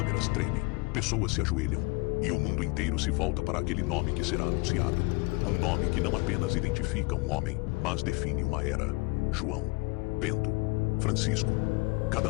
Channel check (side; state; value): right; quieter; 25.6 dB